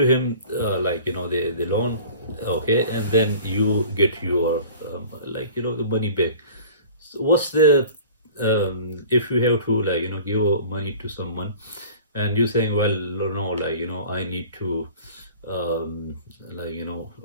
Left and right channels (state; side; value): inverted; both; correlation -0.44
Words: him the loan, okay, and then you get your the money back. So what's the if you have to give money to someone, and you're saying, well, no, I need to